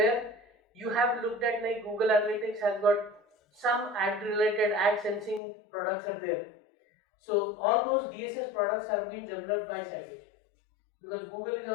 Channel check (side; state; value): right; drops out; at 5.4 s